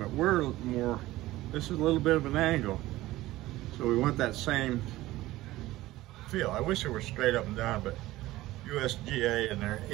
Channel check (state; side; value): quieter; left; 17.0 dB